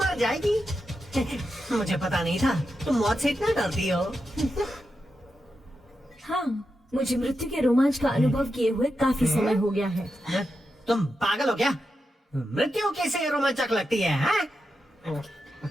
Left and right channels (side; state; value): both; normal; correlation 0.88